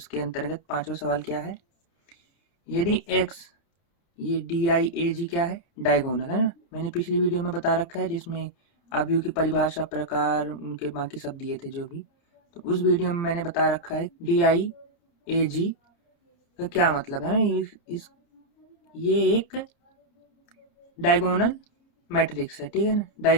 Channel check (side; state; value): right; late; 29 ms